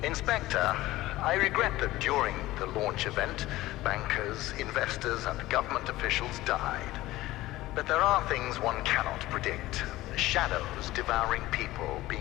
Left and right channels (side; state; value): right; quieter; 17.2 dB